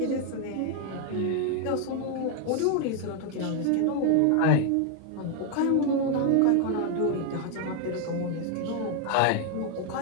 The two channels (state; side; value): different; both; correlation 0.01